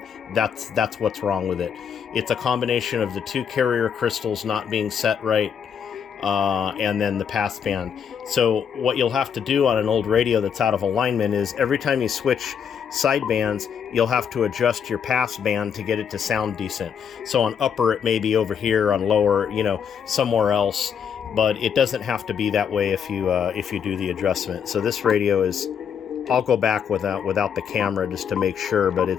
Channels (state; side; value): quieter; right; 7.6 dB